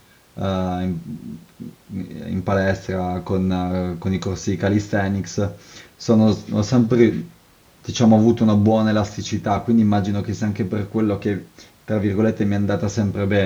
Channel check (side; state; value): both; identical; correlation 1.00